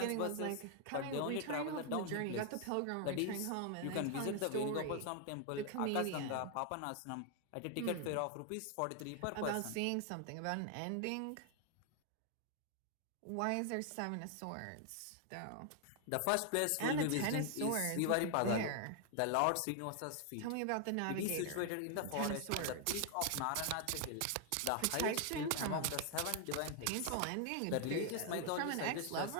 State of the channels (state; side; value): different; both; correlation 0.00